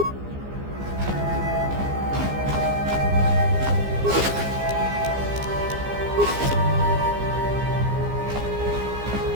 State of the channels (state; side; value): late; left; 15 ms